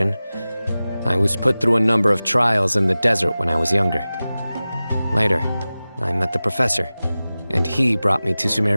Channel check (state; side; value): inverted; both; correlation -0.97